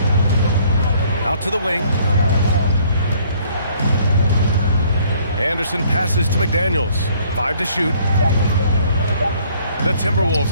Out to the wing. Anderson passes to McDaniels. 5 to shoot. The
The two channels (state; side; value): inverted; both; correlation -0.61